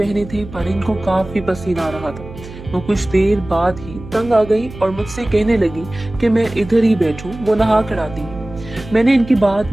थे पर इनको काफी पसीना आ रहा था। वो कुछ देर बाद ही तंग आ गई और मुझसे कहने लगी कि मैं इधर ही बैठूं, वो नहा कर आती है। मैंने इनकी बात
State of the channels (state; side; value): noise; right; hum, 15 dB below the sound